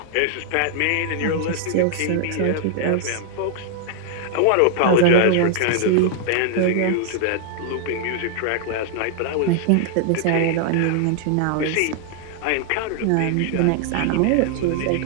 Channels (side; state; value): both; different; correlation 0.00